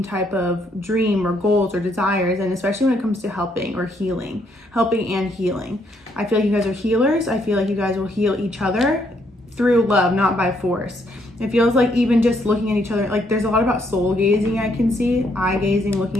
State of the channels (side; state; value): both; normal; correlation 0.72